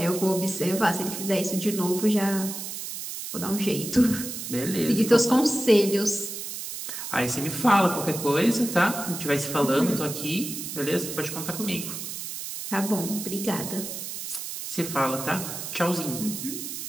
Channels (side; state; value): right; noise; hiss, 7 dB below the sound